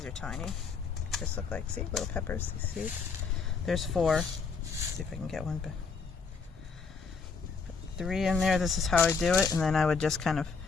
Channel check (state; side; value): quieter; right; 5.1 dB